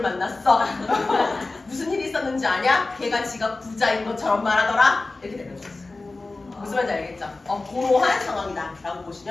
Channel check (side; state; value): right; quieter; 3.4 dB